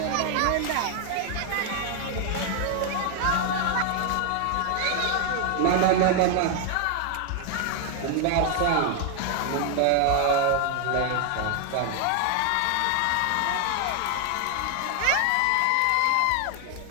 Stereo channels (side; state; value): both; different; correlation 0.00